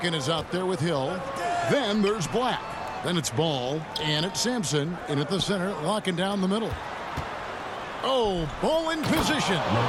is out there with Hill. Then there's Black. Then it's Ball. And it's Sampson in at the center, locking down the middle. Oh, Ball in position.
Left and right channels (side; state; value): both; identical; correlation 1.00